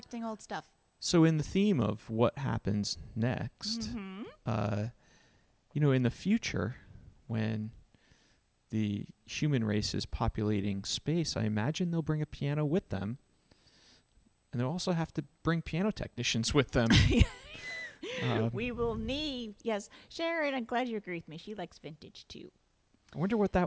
old stuff. So in the theme of what happens next, in the future, when the human race is populating space, I imagine they'll bring a piano with them. And they'll also have to bring piano technicians with them. We will need, yes. Sharon, I'm glad you agree with me. She likes vintage, too. I wonder what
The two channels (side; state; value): both; identical; correlation 1.00